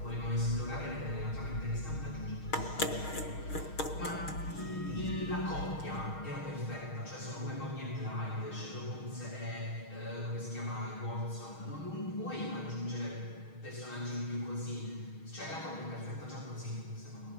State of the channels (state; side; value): late; right; 6.4 ms